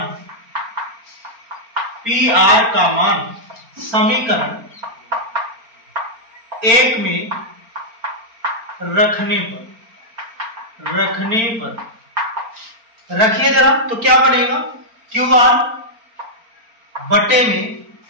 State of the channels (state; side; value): late; left; 4.3 ms